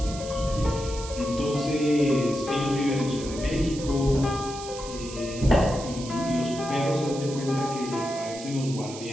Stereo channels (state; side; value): noise; right; hiss, 12 dB below the sound